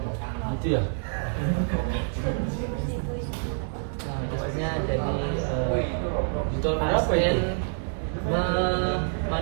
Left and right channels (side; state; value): left; silent; 60 dB below the other